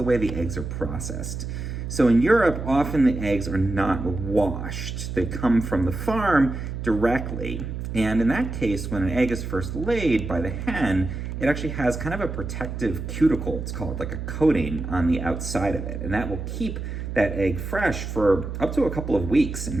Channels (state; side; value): noise; right; hum, 6 dB below the sound